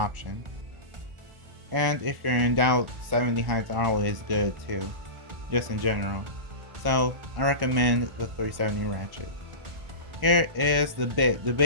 And if you're in doubt, 70 heights are always good too, just in general. So I recommend the 370 Ratchet. Here is the bit. The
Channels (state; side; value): late; left; 1.4 ms